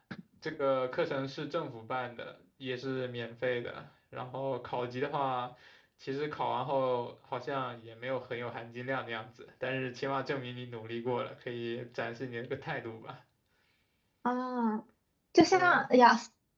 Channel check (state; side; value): identical; both; correlation 1.00